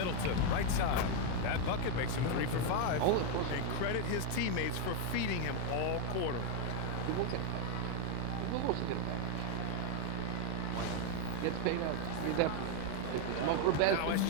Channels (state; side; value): different; both; correlation 0.01